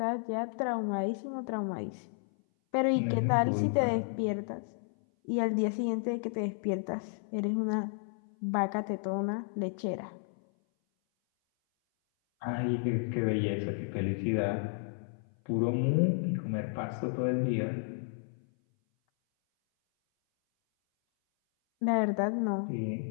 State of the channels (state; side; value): silent; right; 56 dB below the other